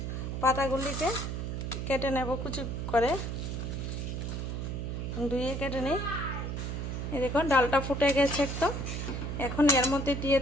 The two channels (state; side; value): noise; right; hum, 3 dB below the sound